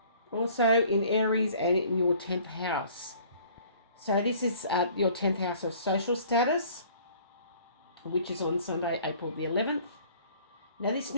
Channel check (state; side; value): inverted; both; correlation -0.53